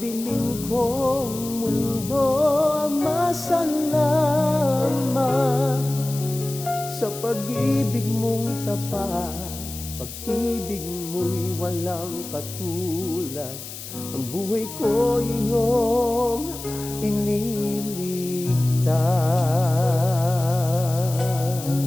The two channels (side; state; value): left; noise; hiss, 11 dB below the sound